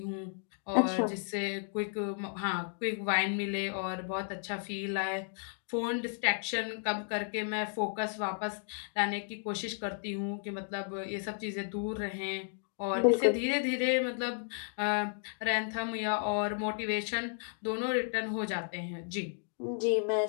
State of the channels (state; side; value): silent; right; digital silence